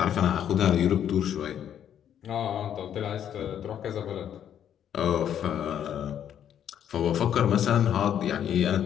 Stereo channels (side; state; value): right; quieter; 9.7 dB